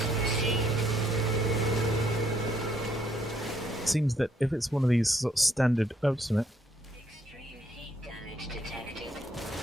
Seems that if it's one of these sort of standard... Oh, just a minute. Extreme heat damage detected.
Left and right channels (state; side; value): normal; both; correlation 0.70